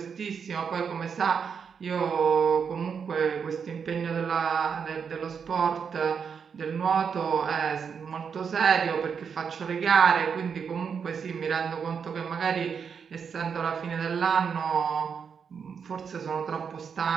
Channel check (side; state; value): left; quieter; 6.6 dB